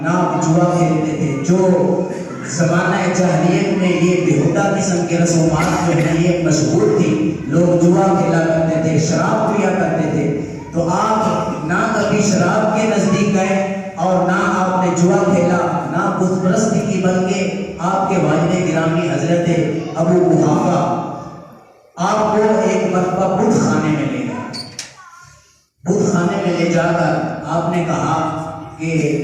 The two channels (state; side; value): identical; both; correlation 1.00